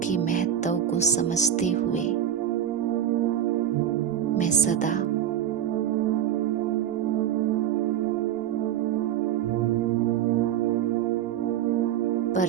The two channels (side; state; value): left; quieter; 10.0 dB